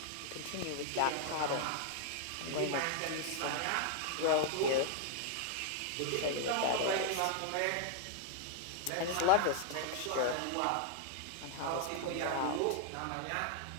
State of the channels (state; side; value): different; both; correlation 0.00